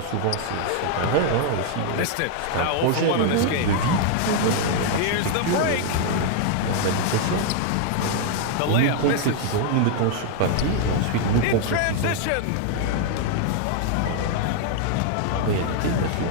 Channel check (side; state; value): both; different; correlation 0.00